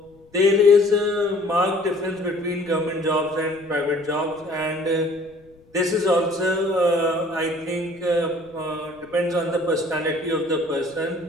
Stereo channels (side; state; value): left; noise; rumble, 29 dB below the sound